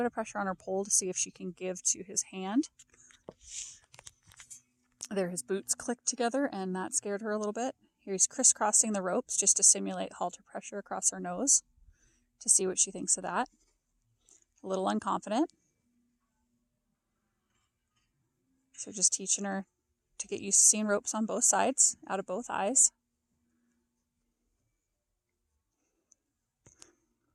of pressure on her pole to see if she can give to his hand. There his boots clicked together, and that scared her a little bit. Here he's crisscrossing the ropes just to simulate halter pressure across her nose to see what she thinks of that. A little unconfident. So just teaching her to get used to seeing ropes on both sides, out of both eyes.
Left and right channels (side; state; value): both; identical; correlation 1.00